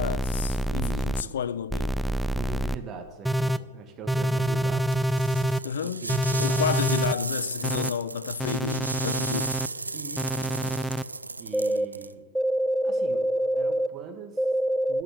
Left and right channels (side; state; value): both; normal; correlation 0.58